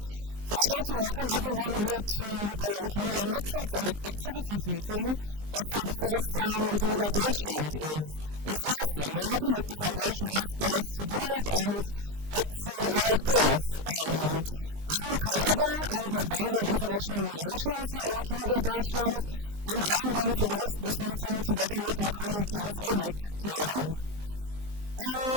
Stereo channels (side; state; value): left; late; 19 ms